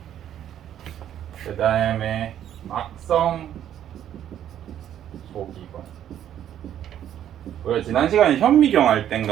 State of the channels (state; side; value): quieter; left; 10.6 dB